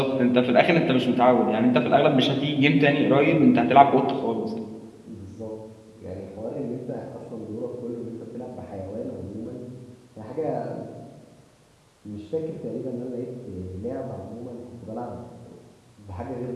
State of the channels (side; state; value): both; identical; correlation 1.00